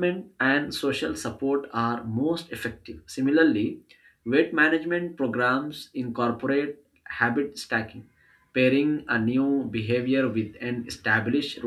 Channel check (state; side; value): identical; both; correlation 1.00